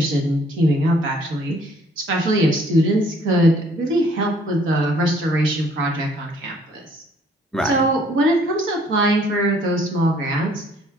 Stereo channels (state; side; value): normal; both; correlation 0.61